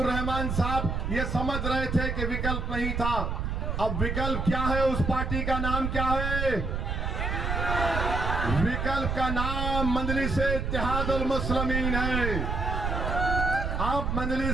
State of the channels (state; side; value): noise; right; rumble, 1 dB below the sound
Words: रहमान साहब ये समझ रहे थे कि विकल्प नहीं था। अब विकल्प क्या है? उस पार्टी का नाम क्या है? विकल्प का नाम मजलिस-ए-इत्तेहादुल मुस्लिमीन है। अब